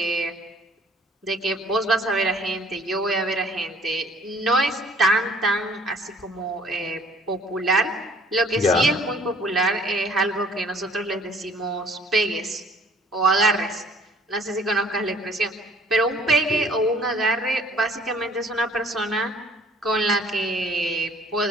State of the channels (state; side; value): normal; both; correlation 0.56